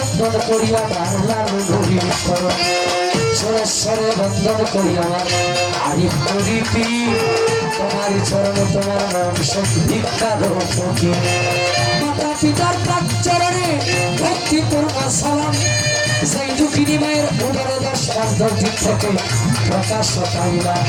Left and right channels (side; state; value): both; identical; correlation 1.00